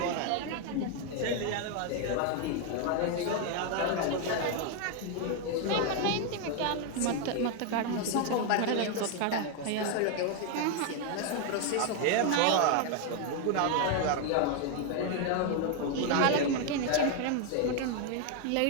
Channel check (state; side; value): different; both; correlation 0.01